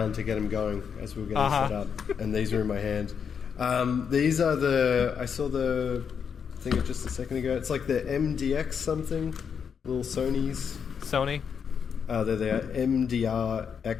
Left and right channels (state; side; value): quieter; right; 6.9 dB